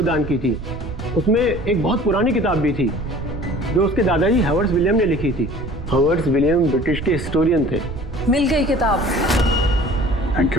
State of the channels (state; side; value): noise; right; rumble, 10 dB below the sound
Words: दान की थी। उसमें एक बहुत पुरानी किताब भी थी जो उसके दादाजी हावर्ड विलियम ने लिखी थी। हावर्ड विलियम ब्रिटिश के हिस्टोरियन थे। मिल गई किताब। Thank